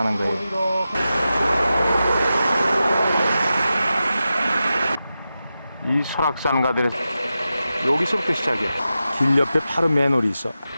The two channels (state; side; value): inverted; both; correlation -0.91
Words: 거예요. 이 설악산 가든에서 여기서부터 시작이에요. 길 옆에 바로 맨홀이 있어.